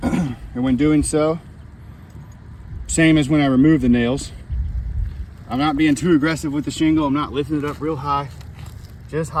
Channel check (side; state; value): both; identical; correlation 1.00